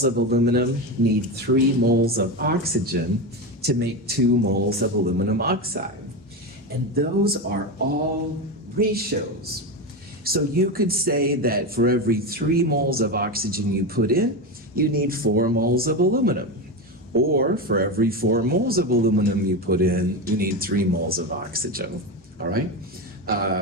of aluminum need 3 moles of oxygen to make 2 moles of aluminum oxide. And those are all ratios. So you could say that for every 3 moles of oxygen you put in, you need 4 moles of aluminum. Or for every 4 moles of aluminum you put in, you need 3 moles of oxygen. All right?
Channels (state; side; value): normal; both; correlation 0.17